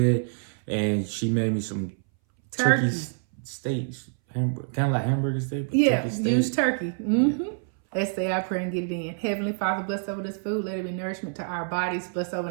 and she made me some turkey steaks, kind of like hamburger steak. But yeah, turkey steak. use turkey. Mm-hmm. Let's say I pray and get it in. Heavenly Father, bless over this food. Let it be nourishment to our bodies. Bless over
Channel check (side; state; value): left; silent; 60 dB below the other